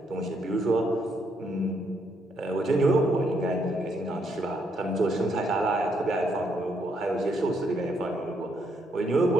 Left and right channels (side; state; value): both; normal; correlation 0.74